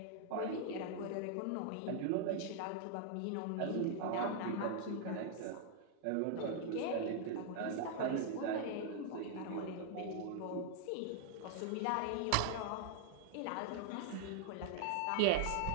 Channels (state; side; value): different; both; correlation 0.00